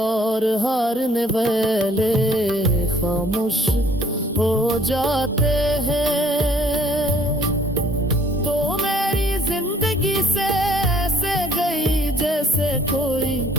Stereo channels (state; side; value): normal; both; correlation 0.59